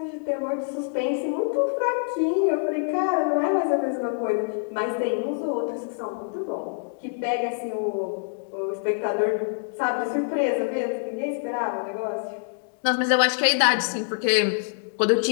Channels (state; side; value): silent; right; digital silence